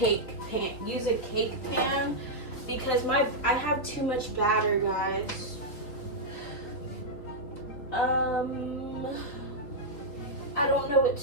pan, use a cake pan, because I have too much batter, guys. I don't know what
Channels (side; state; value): right; late; 3.6 ms